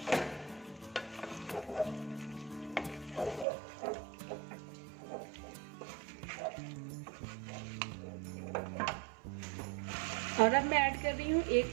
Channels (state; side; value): drops out; left; at 3.5 s